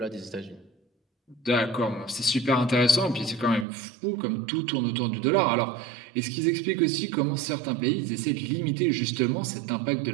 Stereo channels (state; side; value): drops out; left; at 3.7 s